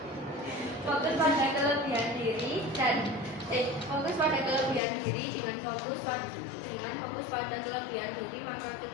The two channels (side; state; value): right; drops out; at 4.8 s